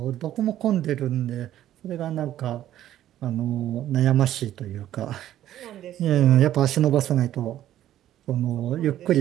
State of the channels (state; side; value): quieter; left; 12.4 dB